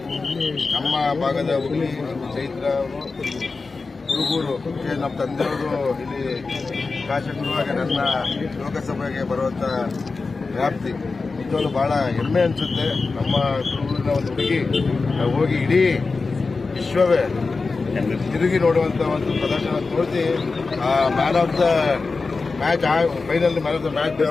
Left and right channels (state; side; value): quieter; right; 4.1 dB